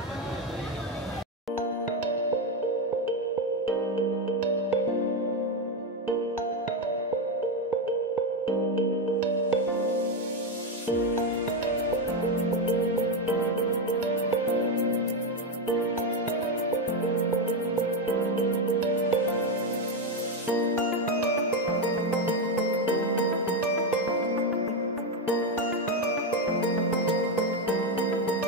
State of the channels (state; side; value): normal; both; correlation 0.08